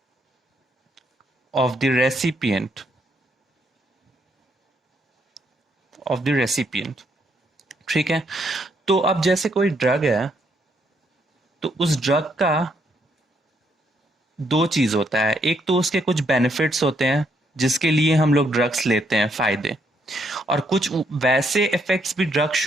of the recipient. ठीक है, तो अब जैसे कोई ड्रग है तो उस ड्रग का दो चीज होता है। एक तो उसके कुछ बेनिफिट्स होते हैं जिसके लिए हम लोग ड्रग्स लेते हैं, फायदे, और कुछ वैसे इफेक्ट्स भी ड्रग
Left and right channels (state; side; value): normal; both; correlation 0.74